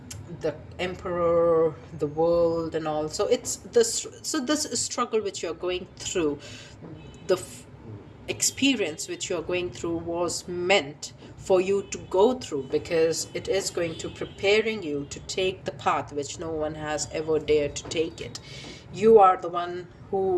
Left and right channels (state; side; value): identical; both; correlation 1.00